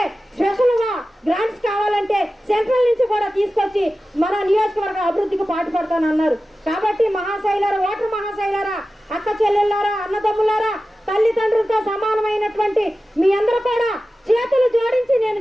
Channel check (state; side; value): normal; both; correlation 0.94